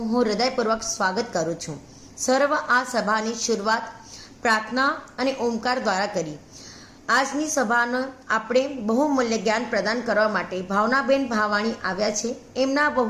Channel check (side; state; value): both; identical; correlation 1.00